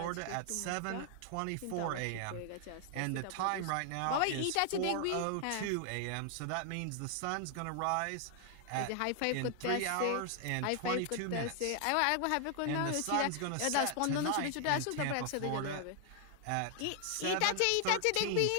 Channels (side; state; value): both; different; correlation 0.00